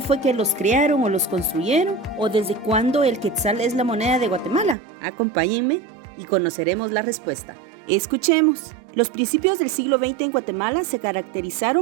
que los crearon o los construyeron? ¿O desde cuándo el quetzal es la moneda de Guatemala? Acompáñenme y conoceremos la respuesta. Escuchemos. Los principios del siglo XX en Guatemala se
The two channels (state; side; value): drops out; left; at 4.8 s